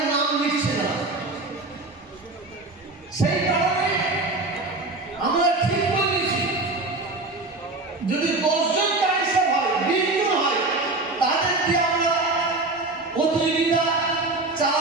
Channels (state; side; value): quieter; left; 3.1 dB